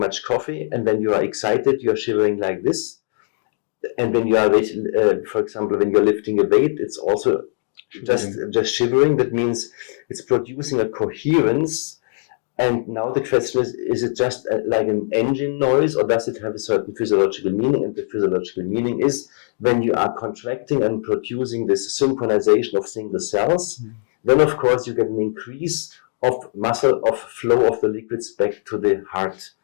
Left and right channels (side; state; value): right; silent; digital silence